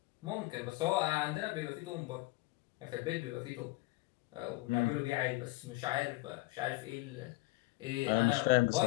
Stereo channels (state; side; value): quieter; right; 21.5 dB